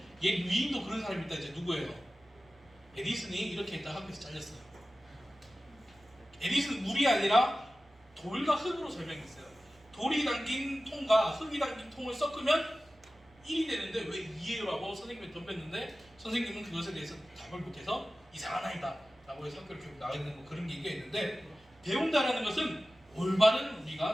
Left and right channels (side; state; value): both; normal; correlation 0.95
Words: 얘 위인도 그런 사람이 있다. 이제 누구예요? 에디슨이 이렇게 했다 학교에서 잘렸어요. 에디슨 물이 아니라 돌과 흙으로 설명했어요. 돌이 담긴 통과 흙이 담긴 통을 섞으면 1이 되는데 왜 2예요라고 선생님이 덤볐는데 선생님은 그것에 대해서 답을 못해서 이상한 아이다 라고 해서 학교를 결국 나가야 되는 뭐 그런 얘기가 있는데 배운다라는 것은 올바른